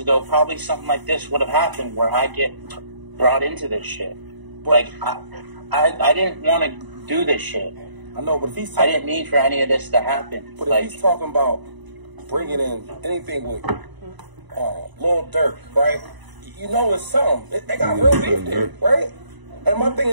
probably something like this would have happened where I get brought into this shit. Like, I didn't want to do this shit. I know, but if he's I didn't mean for any of this to happen. But if he's talking about bringing in anything with Lil Durk, right? You know it's something. They got real beef there, right? And my thing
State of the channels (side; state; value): left; late; 1.0 ms